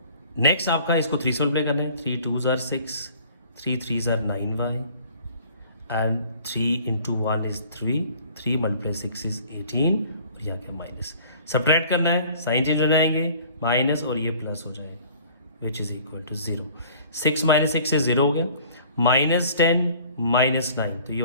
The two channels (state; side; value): inverted; both; correlation -0.51